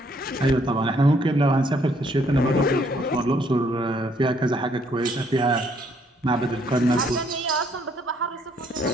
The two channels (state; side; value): normal; both; correlation 0.67